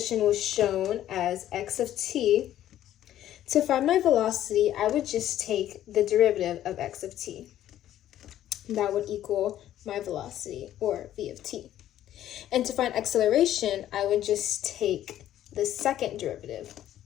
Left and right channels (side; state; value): right; quieter; 12.2 dB